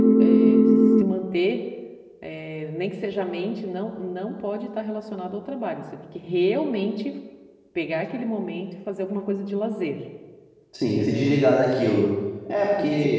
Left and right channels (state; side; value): identical; both; correlation 1.00